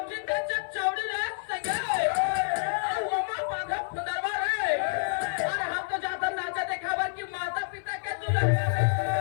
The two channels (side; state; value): right; silent; 55 dB below the other